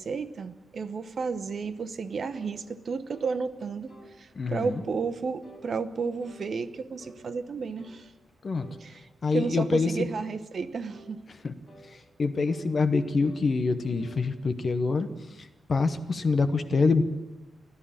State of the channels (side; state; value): both; normal; correlation 0.87